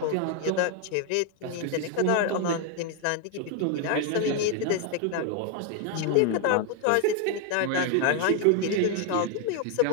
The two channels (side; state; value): both; different; correlation 0.01